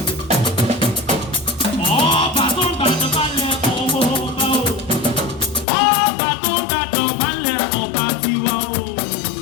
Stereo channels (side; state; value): right; drops out; at 5.7 s